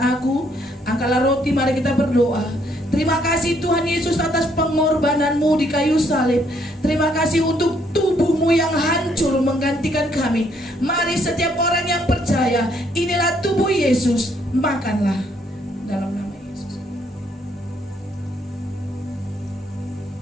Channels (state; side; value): normal; both; correlation 0.69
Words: aku. Angkatlah roti, mari kita berdoa. Terima kasih Tuhan Yesus atas pengorbananmu di kayu salib. Terima kasih untuk tubuhmu yang hancur menggantikan kami. Mari setiap orang yang percaya, inilah tubuh Yesus, makanlah dalam nama Yesus.